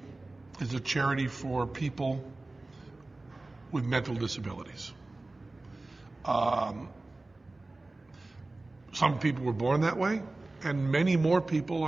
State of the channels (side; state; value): left; quieter; 3.0 dB